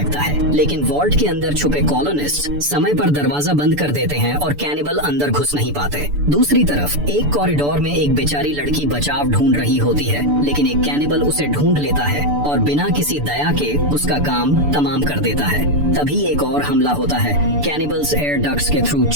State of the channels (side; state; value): left; late; 6.9 ms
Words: है। लेकिन वॉल्ट के अंदर छुपे कॉलोनिस्ट समय पर दरवाजा बंद कर देते हैं और कैनिबल अंदर घुस नहीं पाते। दूसरी तरफ एक कॉरिडोर में एक बेचारी लड़की बचाव ढूंढ रही होती है, लेकिन एक कैनिबल उसे ढूंढ लेता है और बिना किसी दया के उसका काम तमाम कर देता है। तभी एक और हमला होता है। कैनिबल्स एयर डक्ट्स के थ्रू